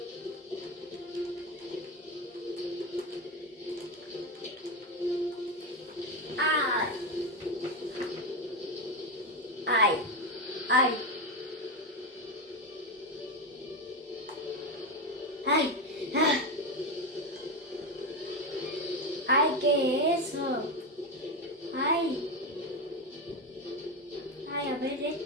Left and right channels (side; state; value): both; normal; correlation 0.12